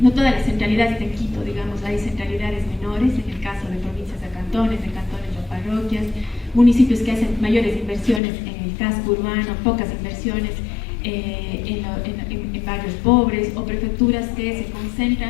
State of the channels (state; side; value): drops out; right; at 8.2 s